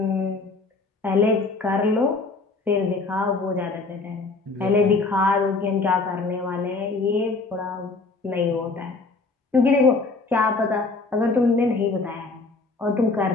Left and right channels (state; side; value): quieter; right; 3.8 dB